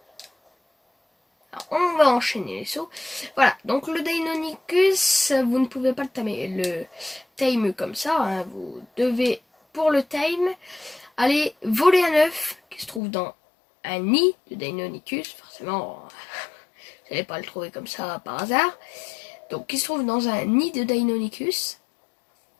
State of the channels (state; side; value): drops out; right; at 13.0 s